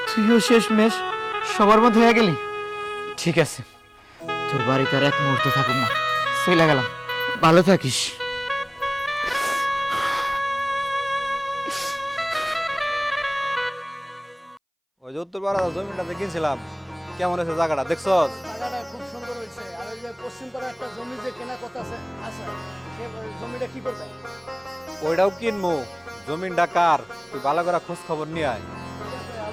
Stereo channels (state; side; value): identical; both; correlation 1.00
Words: তুইও শেষমেশ সবার মধ্যে হয়ে গেলি। ঠিক আছে, তোর বাড়িতে আর এক মুহূর্ত থাকুক না, চলে গেলাম, ভালো থাকিস। ওই যে উত্তরপাড়া জমিটাতে কিনছিলাম, কেমন আছে জায়গাটা দেখছস? জায়গাটা খুব সুন্দর হয়েছে। আর ওই যে পশ্চিম পাড়া একটা জমি যে কেনা কথা আছে আছে, সে জমিটা কি করবে? ওইটাও কিনবো। জমিনটা কার, তুই ভালো করে খোঁজ খবর নিয়ে আয়। ঠিক আছে,